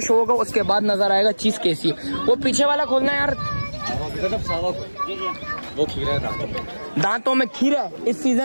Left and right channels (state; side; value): inverted; both; correlation -1.00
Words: होगा उसके बाद नजर आएगा चीज कैसी है। वो पीछे वाला खोलना है यार। वो खीरा है दांतों में खीरा इस